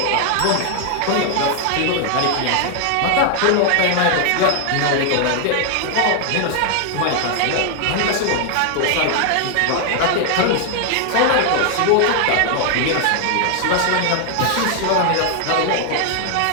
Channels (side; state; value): both; different; correlation 0.00